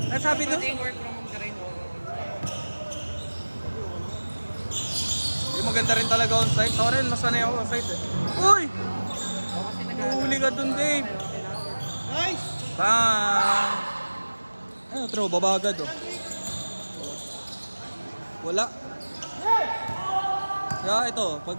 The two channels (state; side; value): inverted; both; correlation -1.00